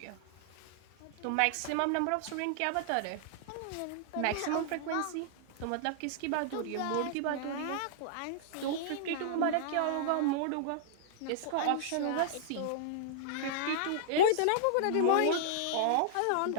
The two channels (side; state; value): both; different; correlation -0.01